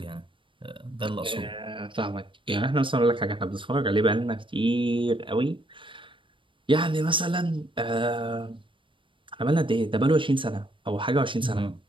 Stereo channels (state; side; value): late; left; 0.25 ms